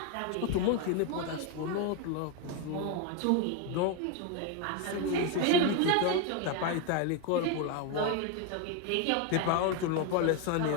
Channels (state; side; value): different; both; correlation 0.01